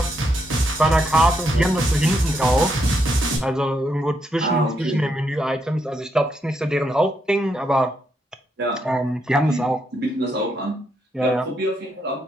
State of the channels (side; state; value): both; normal; correlation 0.78